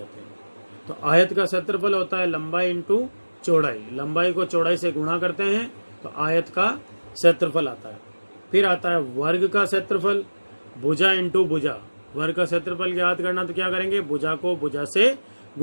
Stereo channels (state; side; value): inverted; both; correlation -1.00